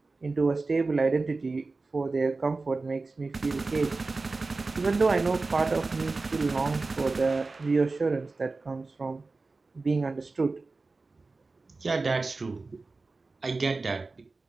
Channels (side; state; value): left; quieter; 3.7 dB